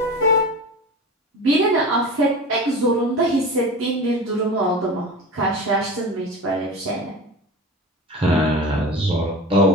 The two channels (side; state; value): both; normal; correlation 0.31